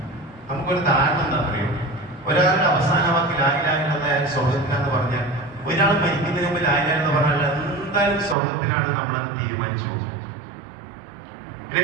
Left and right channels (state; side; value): drops out; left; at 8.3 s